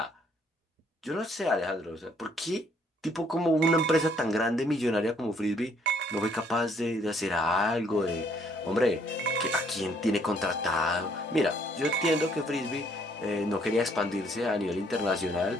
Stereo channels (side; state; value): both; normal; correlation 0.66